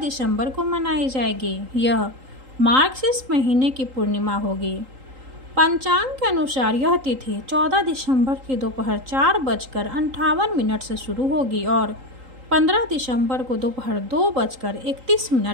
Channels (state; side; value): late; left; 3.8 ms